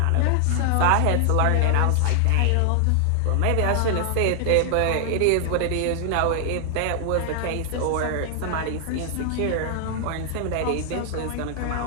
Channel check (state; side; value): different; both; correlation 0.00